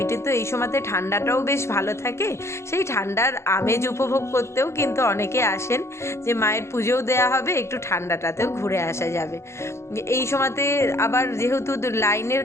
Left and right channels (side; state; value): right; late; 0.13 ms